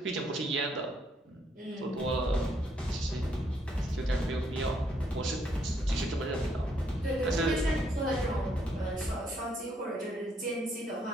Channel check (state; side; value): normal; both; correlation 0.72